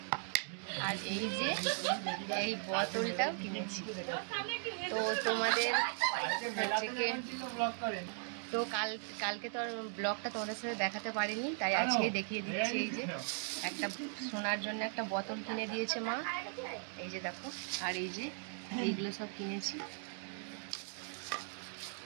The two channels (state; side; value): silent; left; 52 dB below the other